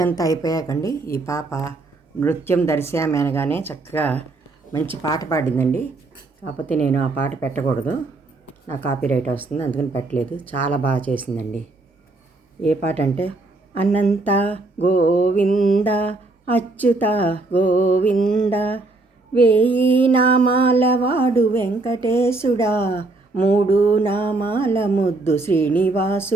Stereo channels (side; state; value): left; quieter; 3.2 dB